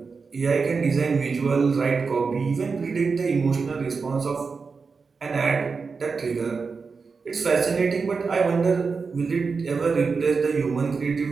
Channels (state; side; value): quieter; left; 4.9 dB